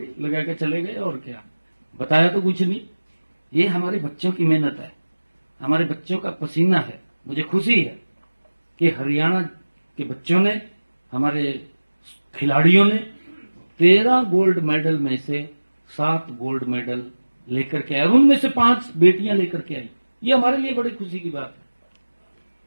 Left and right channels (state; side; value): inverted; both; correlation -1.00